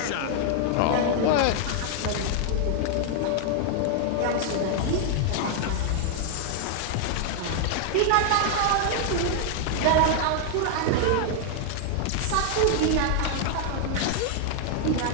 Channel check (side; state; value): both; different; correlation 0.00